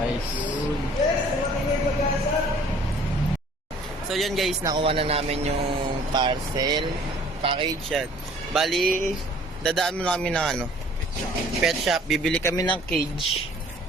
guys. So yun guys, nakuha na namin yung parcel. Package yan. Bali, dadaan mo na kami ng ano, pet shop. Bibili kami ng cage.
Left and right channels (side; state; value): both; normal; correlation 0.54